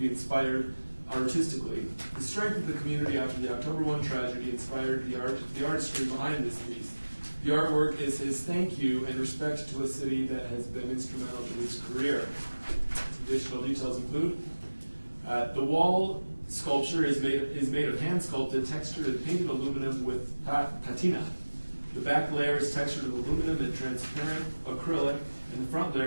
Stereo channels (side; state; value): both; inverted; correlation -1.00